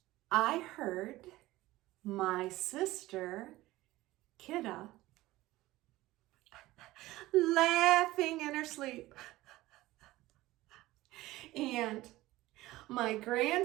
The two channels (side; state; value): left; quieter; 17.7 dB